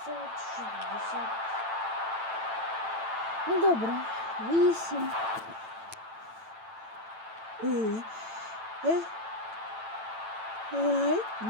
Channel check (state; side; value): late; left; 9.0 ms